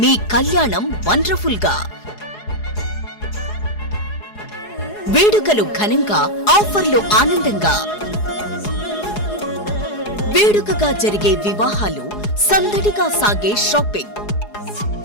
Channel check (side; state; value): right; late; 4.8 ms